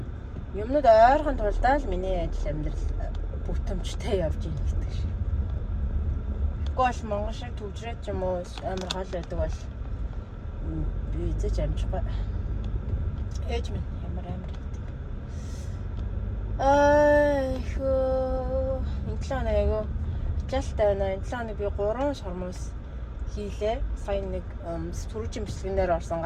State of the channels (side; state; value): both; identical; correlation 1.00